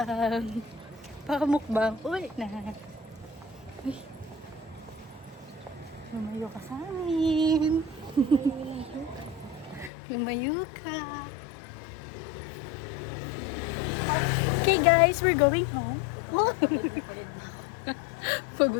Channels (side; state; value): right; drops out; at 9.9 s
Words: Pakamukbang. Ulit na. Uy. Lumayo ka sa amin. Lumayo ka. Okay guys, we're going home. Pagod na ako.